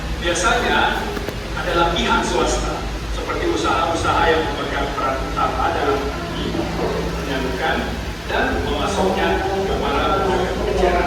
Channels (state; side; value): identical; both; correlation 1.00